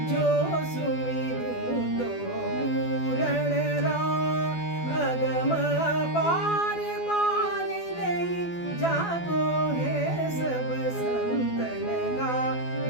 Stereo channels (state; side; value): late; right; 12 ms